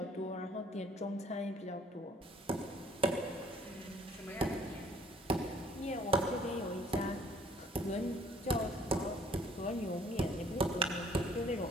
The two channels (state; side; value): normal; both; correlation 0.59